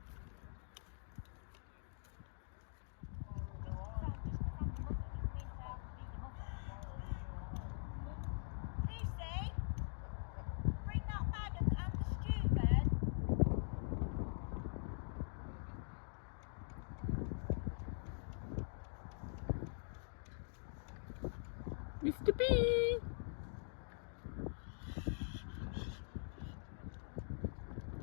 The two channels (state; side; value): silent; right; digital silence